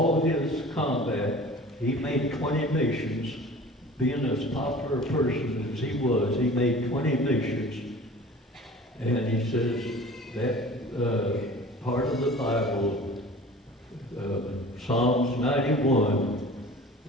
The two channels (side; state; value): both; normal; correlation 0.42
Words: his combat, he made 20 missions. Being as popular a person as he was, he made 20 missions. And he says that part of the Bible, Psalms 91,